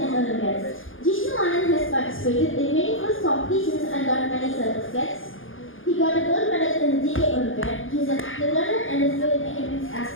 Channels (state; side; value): late; right; 0.58 ms